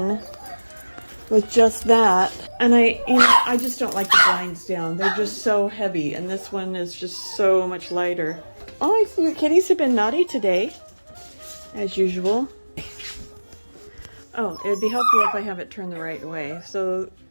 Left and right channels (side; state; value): both; inverted; correlation -1.00